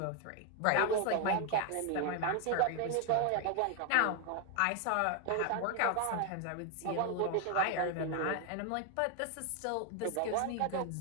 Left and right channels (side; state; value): both; different; correlation 0.01